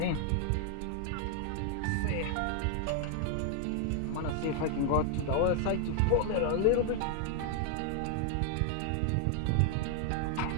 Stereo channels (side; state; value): both; different; correlation 0.00